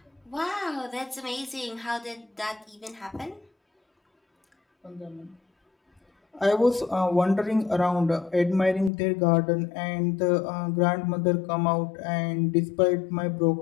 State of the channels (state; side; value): drops out; right; at 8.9 s